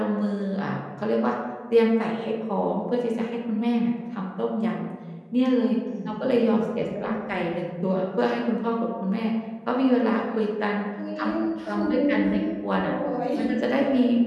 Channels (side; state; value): both; identical; correlation 1.00